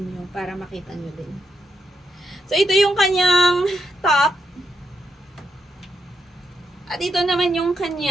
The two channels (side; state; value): both; normal; correlation 0.81